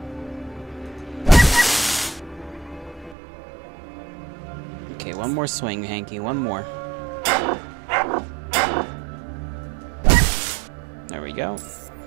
Okay, one more swing, Hanky, one more. There we go.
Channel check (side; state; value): left; drops out; at 3.2 s